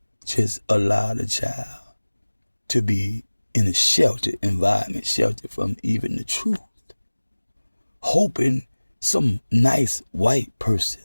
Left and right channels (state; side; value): inverted; both; correlation -1.00